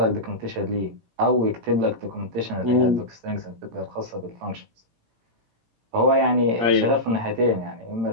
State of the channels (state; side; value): late; left; 18 ms